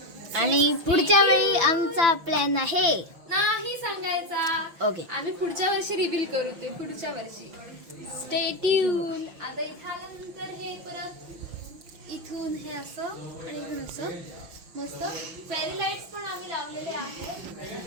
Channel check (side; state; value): left; late; 6.0 ms